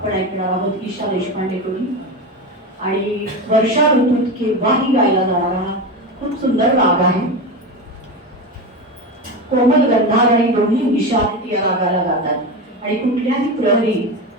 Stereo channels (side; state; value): both; normal; correlation 0.21